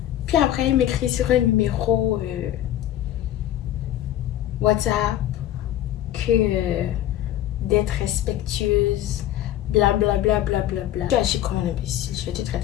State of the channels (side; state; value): right; quieter; 12.6 dB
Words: Puis après, il m'écrit sur un numéro WhatsApp que d'être respectueuse, blablabla. Tu agis comme un imbécile, je vais te